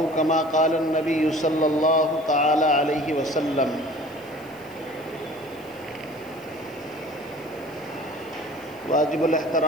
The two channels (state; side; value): noise; right; hiss, 26 dB below the sound